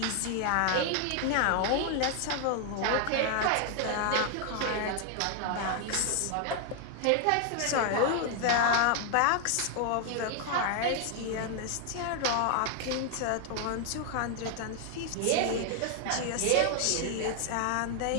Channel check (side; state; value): both; different; correlation 0.00